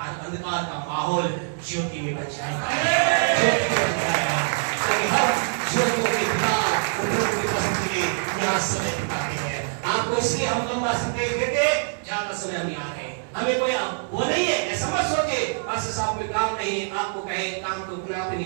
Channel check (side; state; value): left; silent; digital silence